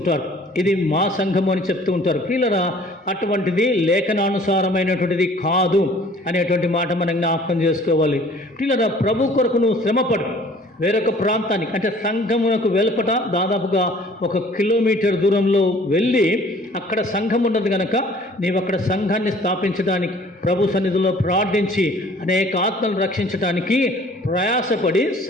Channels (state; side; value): normal; both; correlation 0.52